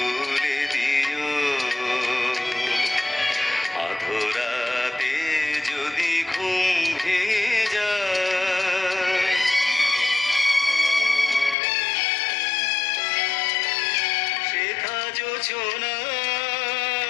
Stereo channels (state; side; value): drops out; right; at 11.6 s